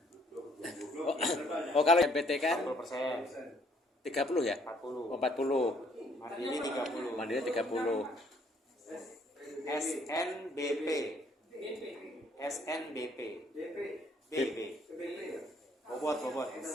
Kalau MPT kan 40%, 30 ya? 40, 40. mandiri 30. Mandiri 30. SNBP, SNBP, BP, bobot.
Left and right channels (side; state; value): both; normal; correlation 0.64